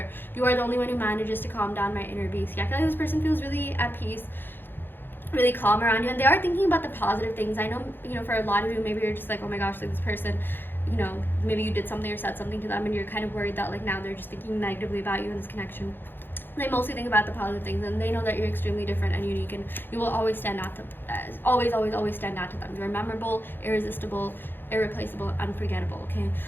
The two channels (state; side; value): late; right; 0.098 ms